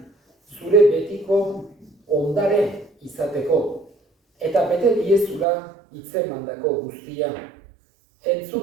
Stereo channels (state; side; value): drops out; left; at 5.5 s